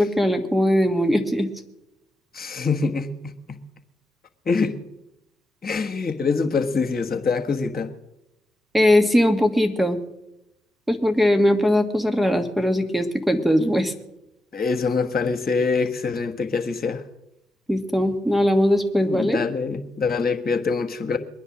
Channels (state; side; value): normal; both; correlation 0.88